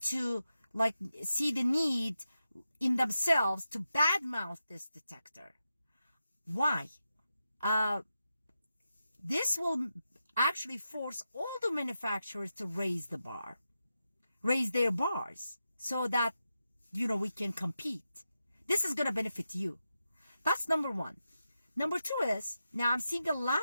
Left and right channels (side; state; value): both; inverted; correlation -0.89